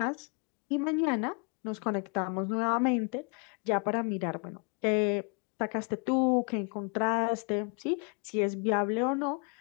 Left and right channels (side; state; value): right; quieter; 35.8 dB